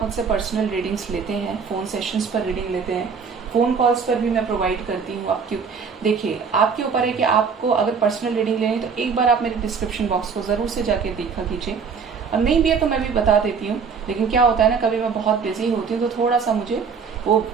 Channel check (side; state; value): left; quieter; 5.8 dB